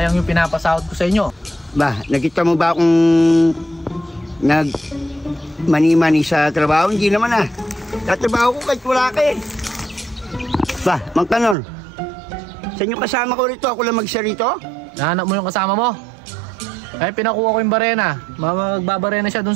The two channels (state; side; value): drops out; left; at 11.6 s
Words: yung pinapasahod ko sa inyo. Ba, nakita mo ba akong mani-mani sa trabaho? Hindi naman ah. Tatrabaho ko kahit wala ka eh. Ba, Mang Kanor, saan yung kasama ko rito? Ako lang mag-isa rito? Nahanap mo yung kasama mo? Ay, pinakuha ko yung barena. Magbabarena siya dun